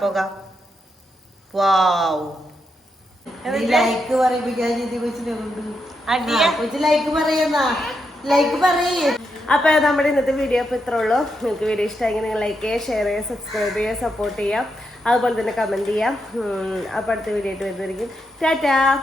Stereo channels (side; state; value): both; normal; correlation 0.83